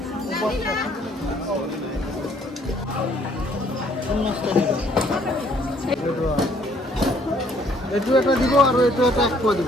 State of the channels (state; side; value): normal; both; correlation 0.63